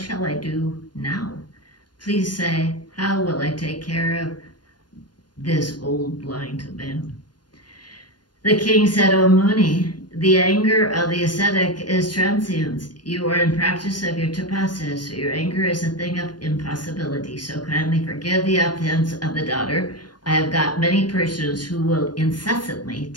I do now? Please say, how will I take care of this old blind man? The king said, O Muni, the anger of the ascetic is transient. You are in practice of your tapasya, so your anger is a thing of impossibility. So kindly forgive the offense of the daughter. I have got many persons who will incessantly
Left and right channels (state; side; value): late; right; 0.70 ms